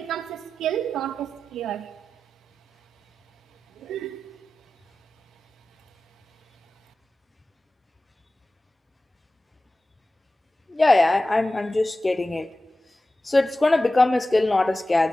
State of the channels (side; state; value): both; normal; correlation 0.94